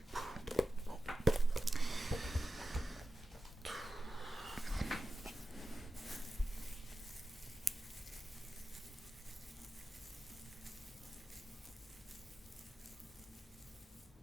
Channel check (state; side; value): normal; both; correlation 0.93